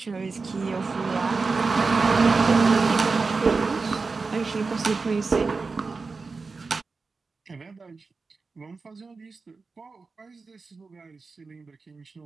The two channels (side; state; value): left; quieter; 4.2 dB